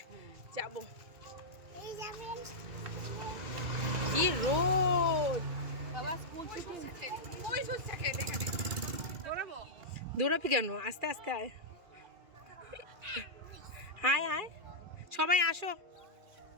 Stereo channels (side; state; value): left; late; 2.4 ms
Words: যাব। কি রোদ, দৌড়াবি কেন, আস্তে আস্তে আয়, আয় আয় সবাই আসো।